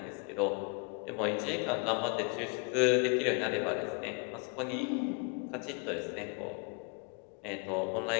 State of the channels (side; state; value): right; quieter; 35.0 dB